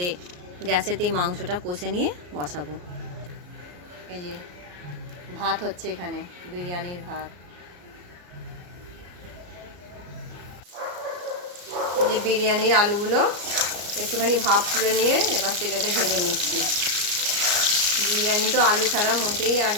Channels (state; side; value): late; left; 34 ms